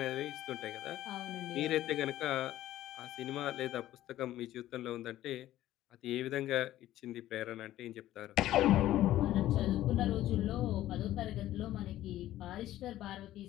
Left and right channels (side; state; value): right; quieter; 14.0 dB